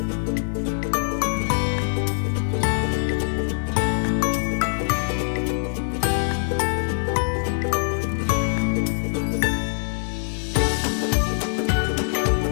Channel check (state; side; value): silent; right; digital silence